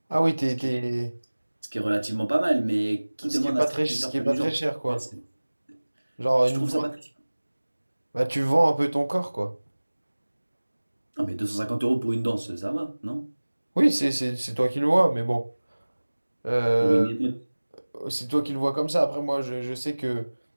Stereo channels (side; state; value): both; inverted; correlation -1.00